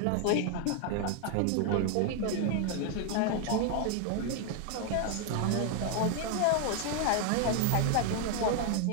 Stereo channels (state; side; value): different; both; correlation 0.00